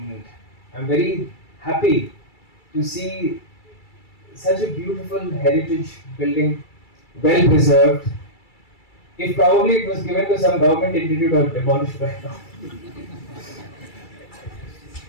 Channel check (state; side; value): late; right; 2.3 ms